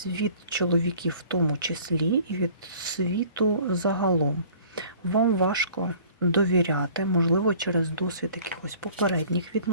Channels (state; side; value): inverted; both; correlation -0.51